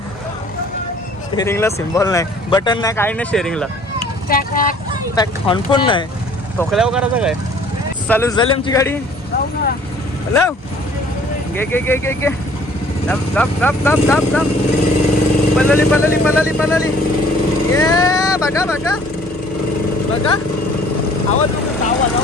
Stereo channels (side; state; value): both; normal; correlation 0.55